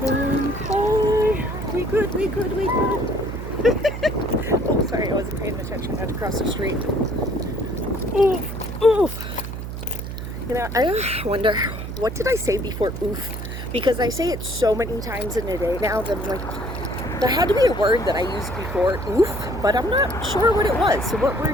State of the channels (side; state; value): right; noise; hum, 7 dB below the sound